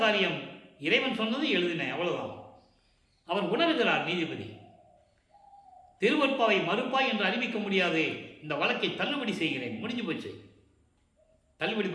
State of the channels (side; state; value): both; identical; correlation 1.00